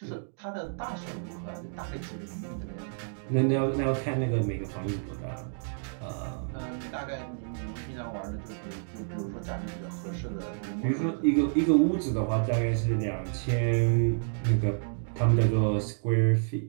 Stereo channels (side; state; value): left; silent; digital silence